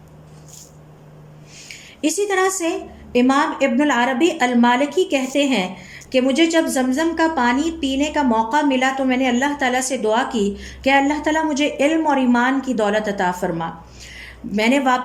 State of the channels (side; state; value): both; identical; correlation 1.00